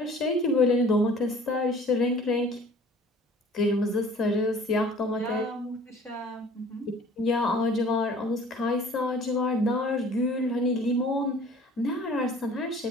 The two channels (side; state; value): both; normal; correlation 0.49